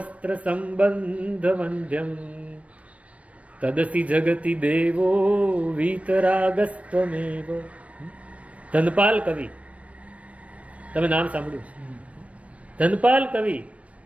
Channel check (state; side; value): late; left; 0.064 ms